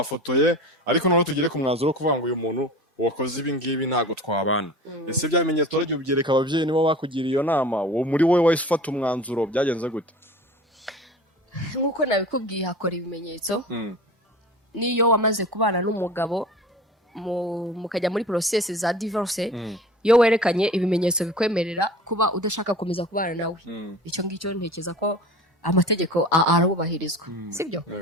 ariko noneho tugire ku mwanzuro kuvuga ngo uyu muntu wakoze ibi ngibi ntago twabana ese bya bimenyetso ryo byereka abavyeyi nibo bakugiriye iyo nama wo muri wowe wahise ufata umwanzuro byagenze gute nkuko nabikubwiye hakora ibimenyetso niyo wamaze kubana n'umugabo mukajya muri process za divorce iyo werekanye ibimenyetso bikwemerera kuba udashaka komeza kubana nawe icyo ngicyo ntekeza ko amategeko arabubahirizwa sibyo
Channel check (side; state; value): both; normal; correlation 0.38